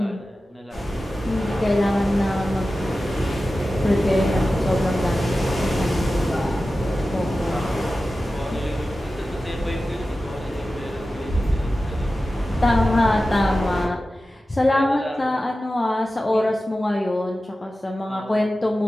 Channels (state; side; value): normal; both; correlation 0.94